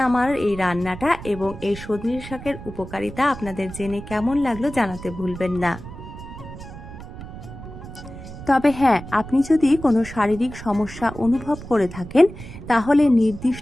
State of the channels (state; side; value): noise; right; rumble, 13 dB below the sound